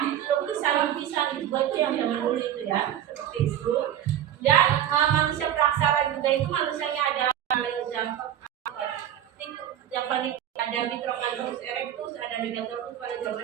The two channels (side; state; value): left; quieter; 11.0 dB